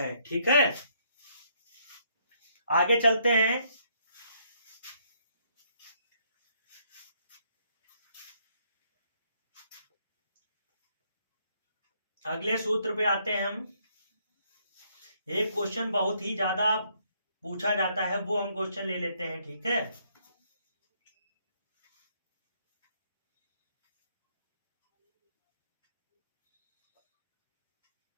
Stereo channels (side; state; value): both; inverted; correlation -0.70